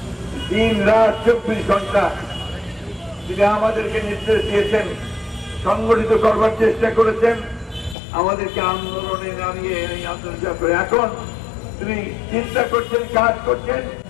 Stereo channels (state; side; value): drops out; right; at 8.0 s